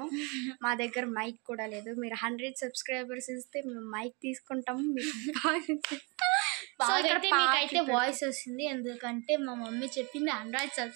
మా దగ్గర మైక్ కూడా లేదు. మీరు 100 సబ్స్క్రైబర్స్ ఇస్తే మేము మైక్ తీసుకుంటాము. మీకైతే వాయిస్ వస్తుంది, ఎందుకంటే మా మమ్మీ చెప్పింది 100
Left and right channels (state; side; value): quieter; left; 30.7 dB